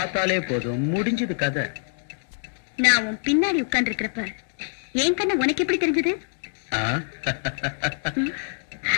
போதும், முடிஞ்சது கதை. நான் உன் பின்னாடி உட்கார்ந்து இருக்கிறப்ப என் கண்ண உனக்கு எப்படி தெரிஞ்சது?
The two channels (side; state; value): right; silent; 62 dB below the other